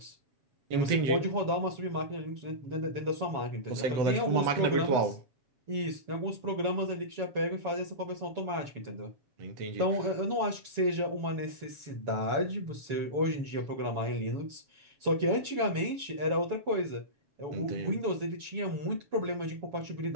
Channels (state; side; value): late; left; 7.3 ms